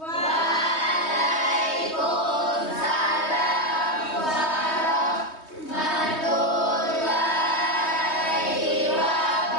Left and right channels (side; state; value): right; late; 3.2 ms